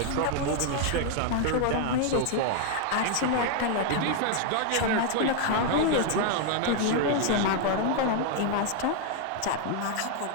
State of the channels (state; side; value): different; both; correlation 0.00